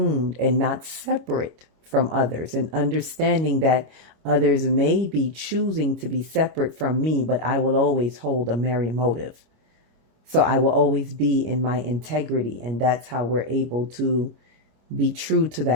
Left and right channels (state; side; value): late; left; 26 ms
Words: and not separate from others, and understanding that others may be choosing to be separate from me, but I will always hold a merry motive. So I will always be in my integrity. And that's how we're able to be true to